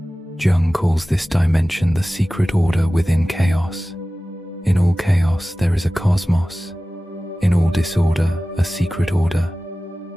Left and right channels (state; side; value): normal; both; correlation 0.96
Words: Jung calls this dimension the secret order within chaos. In all chaos there is a cosmos. In all disorder, a secret order.